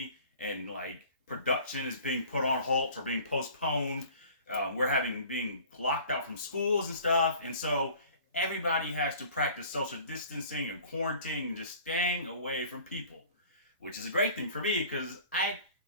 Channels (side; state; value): both; inverted; correlation -0.47